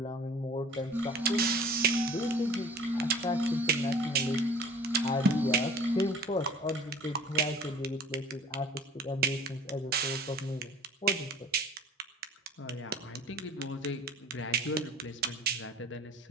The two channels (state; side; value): normal; both; correlation 0.46